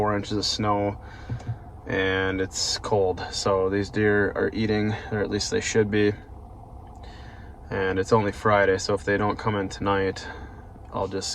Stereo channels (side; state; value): both; identical; correlation 1.00